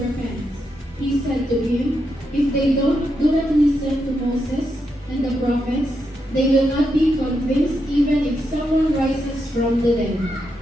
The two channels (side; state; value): both; normal; correlation 0.83